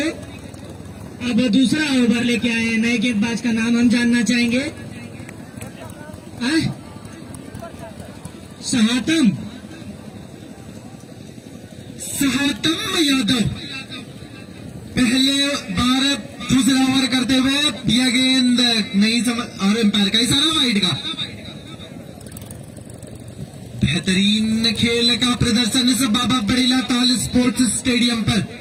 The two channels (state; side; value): identical; both; correlation 1.00